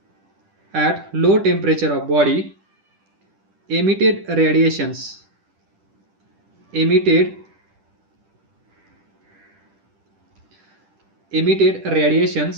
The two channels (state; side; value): late; left; 10 ms